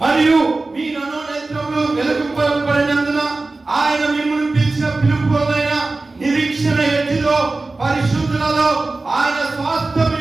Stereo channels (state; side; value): quieter; left; 3.4 dB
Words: మరియు మీ మనోనేత్రములు వెలుగుపడినందున ఆయన మిమ్మల్ని పిలిచిన పిలుపులైన నిరీక్షణ ఎట్టిదో పరిశుద్ధులలో ఆయన స్వాస్థ్యం